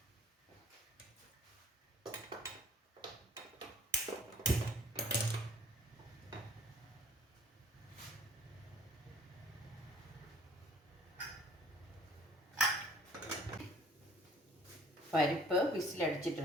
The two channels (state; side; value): normal; both; correlation 0.53